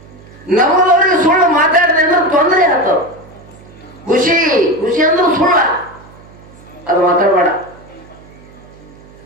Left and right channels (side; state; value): right; noise; hum, 23 dB below the sound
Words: ನಮ್ಮದವ್ರಿಗೆ ಸುಳ್ಳು ಮಾತಾಡಿದೆ ಅಂದ್ರೆ ತೊಂದರೆ ಆಗ್ತಾವ.